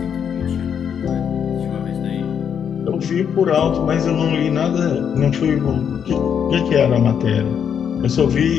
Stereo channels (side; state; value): right; quieter; 7.9 dB